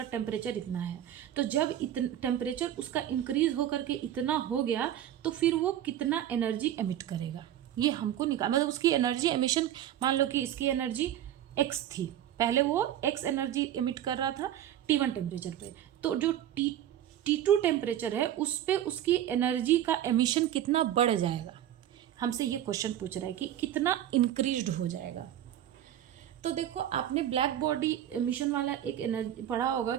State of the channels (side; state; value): left; quieter; 11.4 dB